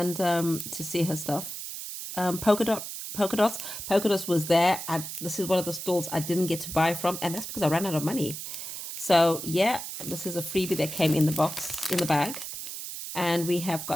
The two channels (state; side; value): noise; right; hiss, 8 dB below the sound